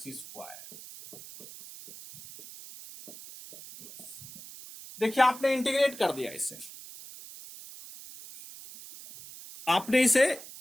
स्क्वायर। देखिए आपने इंटीग्रेट कर दिया, इसे आपने इसे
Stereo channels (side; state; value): right; noise; hiss, 15 dB below the sound